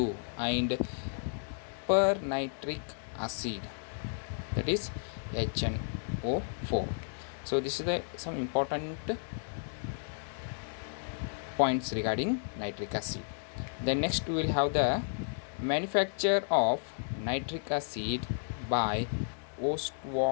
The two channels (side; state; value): right; silent; digital silence